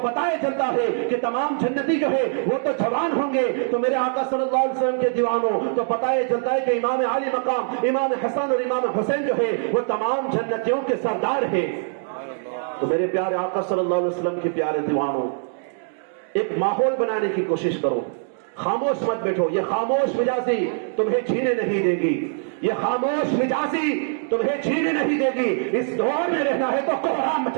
پتہ یہ چلتا ہے کہ تمام جنتی جو ہے وہ تو جوان ہوں گے۔ تو میرے آقا صلی اللہ علیہ وسلم کے دیوانوں، تو پتہ یہ چلتا ہے کہ امام علی مقام امام حسن اور امام حسین جو ہے وہ تمام جنتیوں کے سردار ہیں۔ تو میرے پیارے آقا صلی اللہ علیہ وسلم کے پیارے دیوانوں، ایک ماحول بنانے کی کوشش کرو خاموش مت بیٹھو. یہ خاموش مجازی تمہیں جینے نہیں دے گی. یہ خاموش مجازی تمہیں جینے نہیں دے گی. اس دور میں رہنا ہے تو کوہرام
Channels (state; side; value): silent; left; digital silence